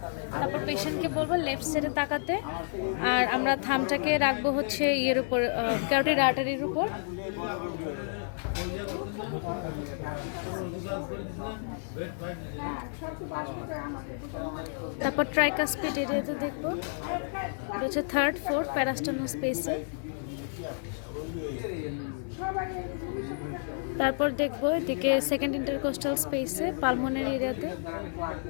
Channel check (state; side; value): silent; right; digital silence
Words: তারপর পেশেন্টকে বলবো লেফট সাইডে তাকাতে, আর আমরা থামটাকে রাখবো হচ্ছে ইয়ের উপর, ক্যারোটিড আর্টারির উপর। তারপর ট্রাইকাসপিড এরিয়াতে দেখবো, এটা হচ্ছে 3rd 4th প্যারাস্টার্নাল স্পেসে। তারপর দেখবো এদিকে 2nd ইন্টারকোস্টাল স্পেসে পালমোনারি এরিয়াতে।